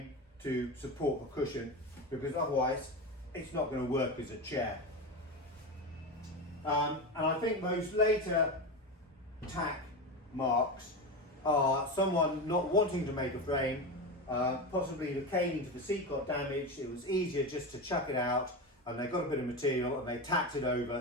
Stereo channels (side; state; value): both; normal; correlation 0.20